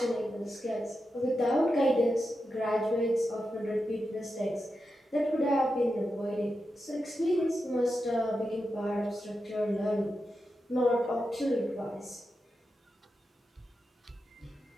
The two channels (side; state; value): both; normal; correlation 0.89